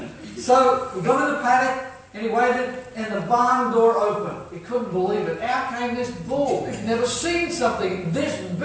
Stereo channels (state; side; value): identical; both; correlation 1.00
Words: So he got in the paddock, and he waited, and the barn door opened. He couldn't believe it. Out came this bull. He'd never seen something this